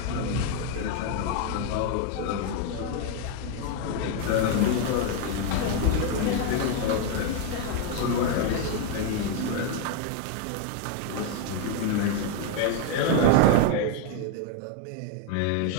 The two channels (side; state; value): both; different; correlation 0.01